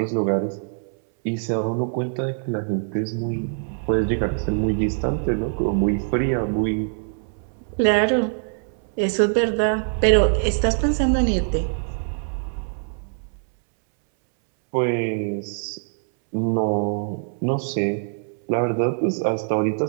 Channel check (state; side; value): silent; left; 63 dB below the other